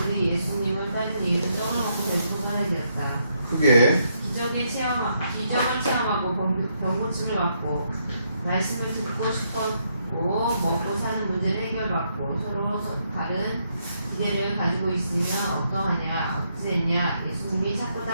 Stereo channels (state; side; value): inverted; both; correlation -0.76